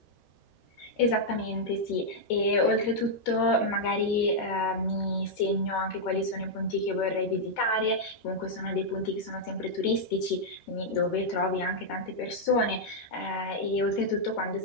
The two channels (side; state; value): right; late; 13 ms